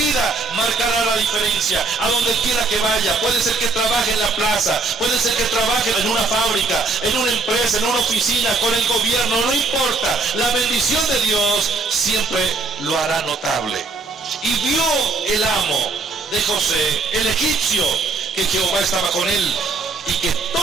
marcará la diferencia a donde quiera que vaya. Puede ser que trabaje en la plaza, puede ser que trabaje en una fábrica, en una empresa, en una oficina, con el gobierno, no importa. La bendición de Dios siempre lo hará notable. Y vio el amo de José, el egipcio, que Jehová estaba con él, y que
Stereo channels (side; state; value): left; quieter; 3.8 dB